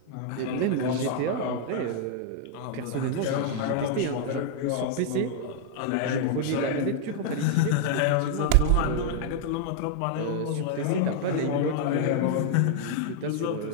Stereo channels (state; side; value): different; both; correlation -0.01